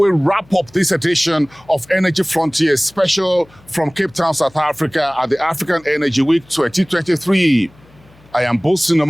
wrap up this edition of Energy Frontiers special from Cape Town, South Africa at the African Energy Week 2023. I am Boason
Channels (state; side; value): noise; left; hum, 28 dB below the sound